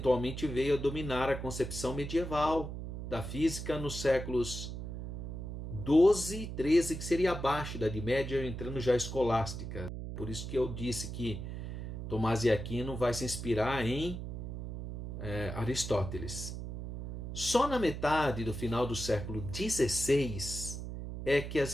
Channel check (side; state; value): right; noise; hum, 7 dB below the sound